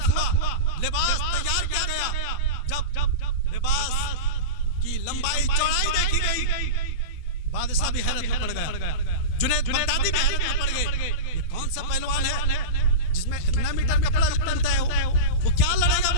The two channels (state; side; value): late; right; 12 ms